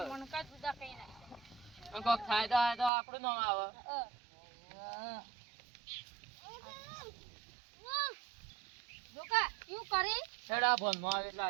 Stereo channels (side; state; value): left; drops out; at 2.9 s